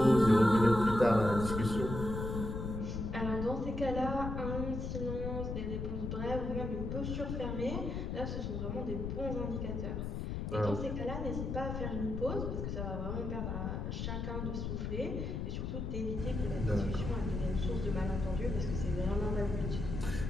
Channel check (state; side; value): noise; left; rumble, 3 dB below the sound